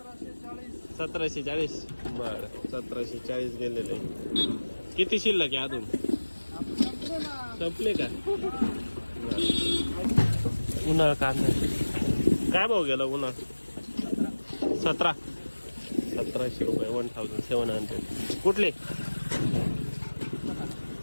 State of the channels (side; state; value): both; inverted; correlation -1.00